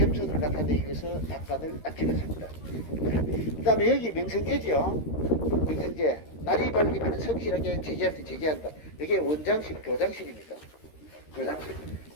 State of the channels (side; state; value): right; late; 13 ms